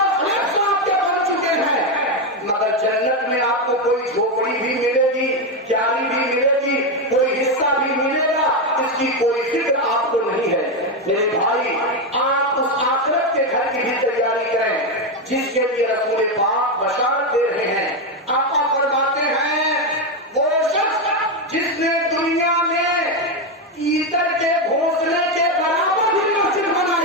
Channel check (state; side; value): normal; both; correlation 0.08